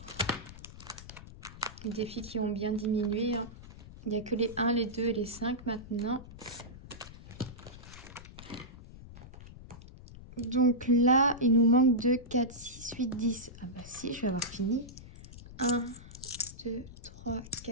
les défis qui ont bien diminué. Hein. Il n'y a que les 1, les 2 et les 5 maintenant. Donc là, il nous manque 2, 4, 6, 8, 10. Ah bah si, je vais avoir fini. 1, 2, 3,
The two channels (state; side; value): noise; left; rumble, 16 dB below the sound